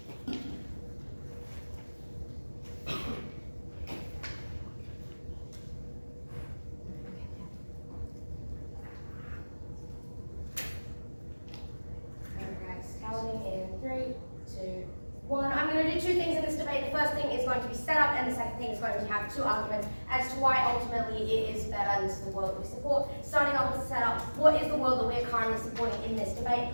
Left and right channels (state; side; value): inverted; both; correlation -1.00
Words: I'm going to do two things in this debate. The first thing is going to be set up, and the second thing is going to have two arguments as to why ultimately it is better, and this is the world we support. Starting off with the setup, what is the world that we're currently supporting in this debate?